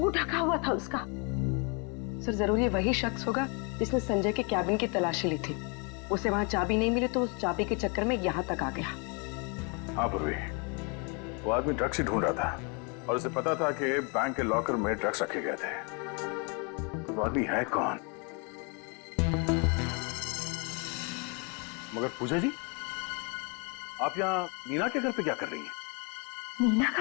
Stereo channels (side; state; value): right; quieter; 34.0 dB